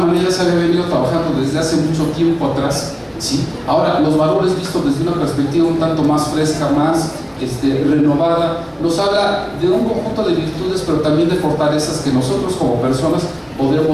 se había venido trabajando desde hace mucho tiempo atrás, ¿sí? Ahora, los valores vistos desde una perspectiva un tanto más fresca, más renovada, nos habla de un conjunto de virtudes, pero también de fortalezas que nosotros como personas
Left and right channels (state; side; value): identical; both; correlation 1.00